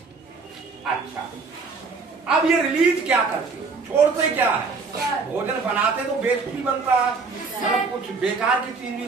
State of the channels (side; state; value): left; quieter; 4.5 dB